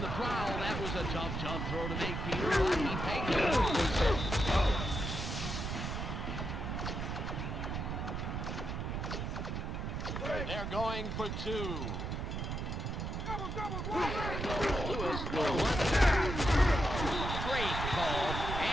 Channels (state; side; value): noise; right; rumble, 3 dB below the sound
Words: the prowl, that was a tough throw to make, Peter. He pegged it. They're going for two. Lewis will run. Great call,